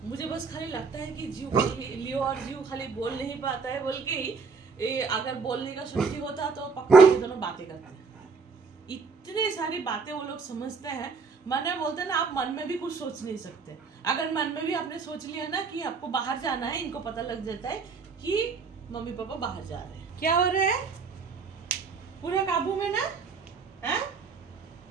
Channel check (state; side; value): quieter; left; 5.0 dB